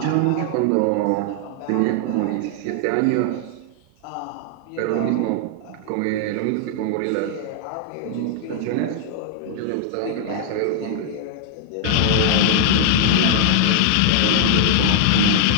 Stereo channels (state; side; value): different; both; correlation 0.00